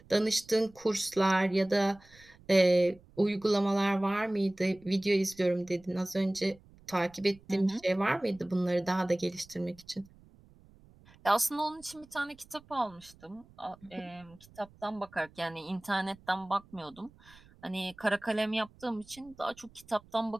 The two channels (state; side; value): noise; right; rumble, 26 dB below the sound